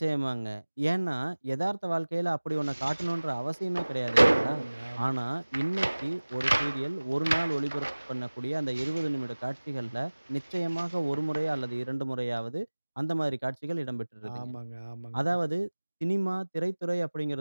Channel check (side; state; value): both; inverted; correlation -1.00